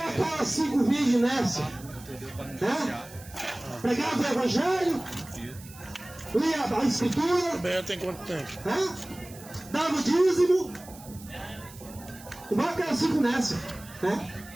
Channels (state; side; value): noise; right; hiss, 19 dB below the sound